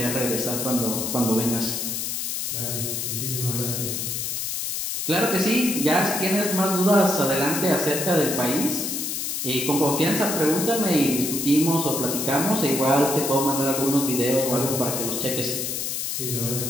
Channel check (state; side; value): noise; left; hiss, 2 dB below the sound